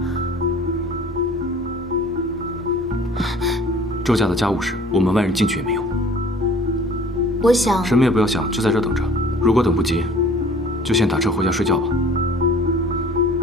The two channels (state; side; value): normal; both; correlation 0.49